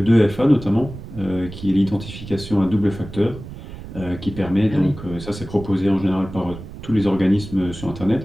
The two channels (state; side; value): noise; right; rumble, 13 dB below the sound